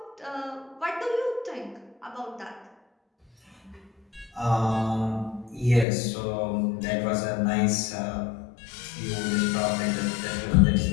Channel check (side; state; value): right; drops out; at 5.9 s